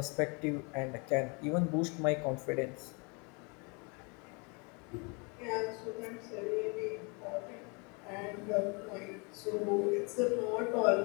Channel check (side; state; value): right; quieter; 31.9 dB